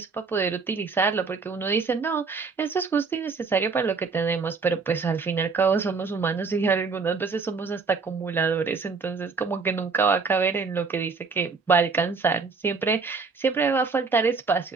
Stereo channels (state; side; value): quieter; left; 4.7 dB